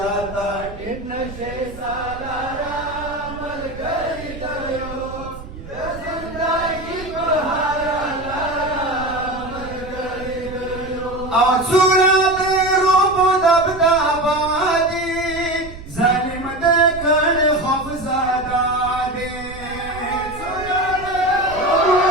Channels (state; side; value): noise; right; rumble, 14 dB below the sound